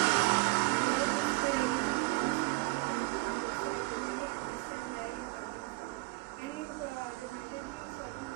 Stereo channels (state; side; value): quieter; left; 24.6 dB